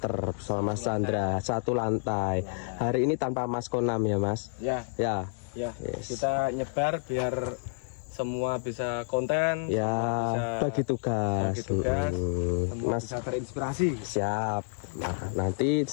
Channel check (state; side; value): silent; right; digital silence